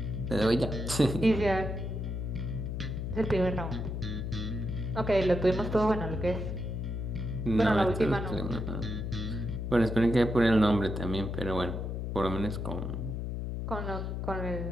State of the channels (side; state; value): left; noise; hum, 3 dB below the sound